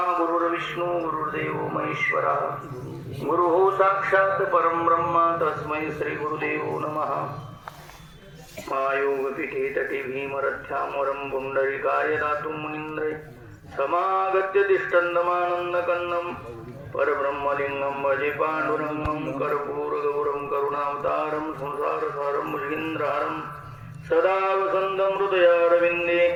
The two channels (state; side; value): identical; both; correlation 1.00